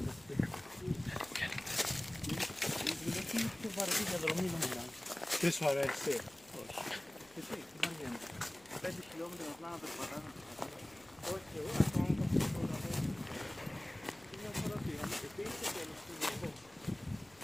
Τι σου αρέσει? 5 χιλιόμετρα απλά να περπατάμε. Όχι, εγώ ακόμα το θέλω. Μια φορά πήγαμε και πήγε στο τέλος του λόγου.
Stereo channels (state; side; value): noise; left; hum, 28 dB below the sound